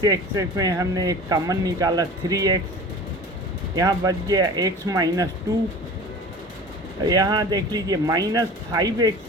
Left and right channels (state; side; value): normal; both; correlation 0.39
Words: में हमने एक कॉमन निकाला 3x, यहाँ बच गया x माइनस 2। यहाँ देख लीजिए -5x